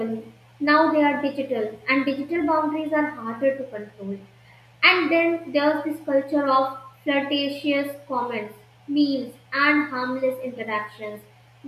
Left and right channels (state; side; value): identical; both; correlation 1.00